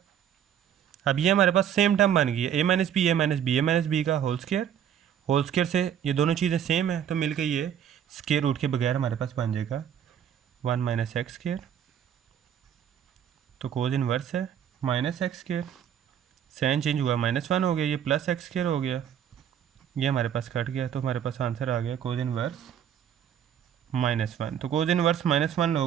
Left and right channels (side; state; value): left; quieter; 9.4 dB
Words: अब ये हमारे पास सेम टर्म बन गई है, ए माइनस बी, ए माइनस बी, ए माइनस बी का होल स्क्वायर से ये दोनों चीज़ें सेम है, तो मिलकर ये स्क्वायर रूट के बगैर हमारे पास बन जाएगा वन माइनस एक्स स्क्वायर। तो कोज इनवर्स है minus X square, sine change हुआ माइनस वन हो गया, ये प्लस एक्स स्क्वायर हो गया, ये हमारे पास कट गया, तो हमारे पास आंसर आ गया कोज इनवर्स माइनस वन। तो कोज इनवर्स माइनस वन